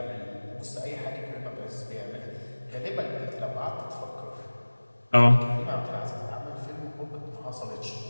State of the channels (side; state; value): both; inverted; correlation -1.00